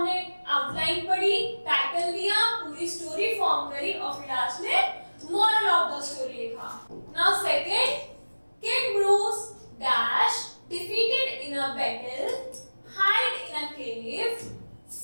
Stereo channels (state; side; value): inverted; both; correlation -1.00